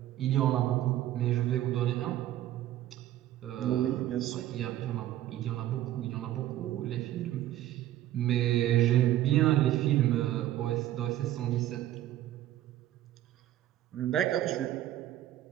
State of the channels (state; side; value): quieter; left; 13.5 dB